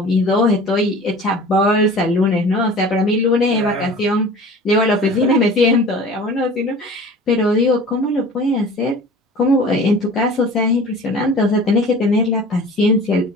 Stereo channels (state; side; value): normal; both; correlation 0.42